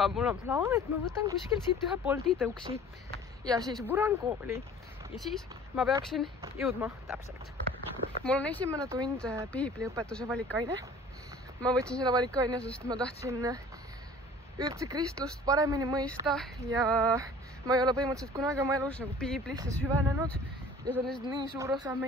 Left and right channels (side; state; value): both; normal; correlation 0.47